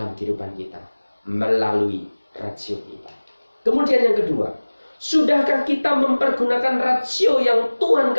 kehidupan kita melalui rasio kita. Kemudian yang kedua, sudahkah kita mempergunakan rasio yang Tuhan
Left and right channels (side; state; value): both; inverted; correlation -1.00